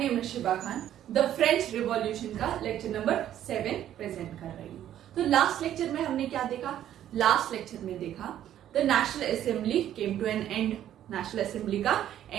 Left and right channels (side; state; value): left; quieter; 11.4 dB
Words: is Shiba Khan. The French revolution का lecture number 7 present कर रही हूँ। तो लास्ट लेक्चर में हमने क्या देखा? लास्ट लेक्चर में देखा the national assembly came to an end. National assembly का